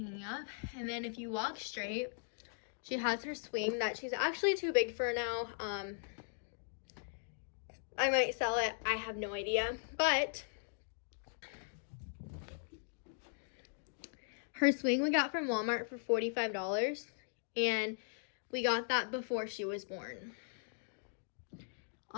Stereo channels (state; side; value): silent; right; digital silence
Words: up. And then if you walk straight, she has her swing that she's actually too big for now. I might sell it, I have no idea, but her swing we got from Walmart for $45, and we got that before she was born.